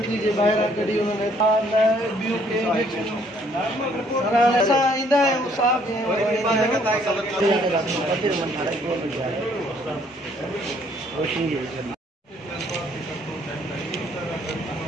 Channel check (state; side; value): normal; both; correlation 0.64